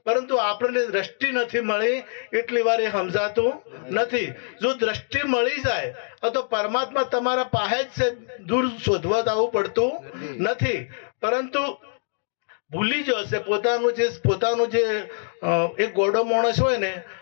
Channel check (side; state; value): right; silent; digital silence